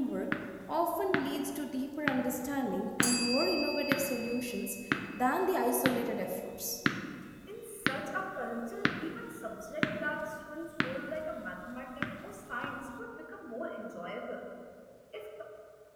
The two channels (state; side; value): identical; both; correlation 1.00